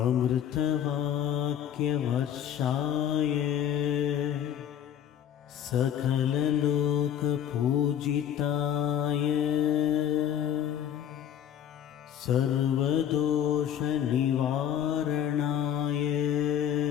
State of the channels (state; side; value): quieter; right; 9.7 dB